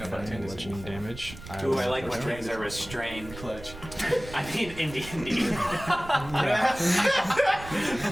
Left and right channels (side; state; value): right; noise; rumble, 14 dB below the sound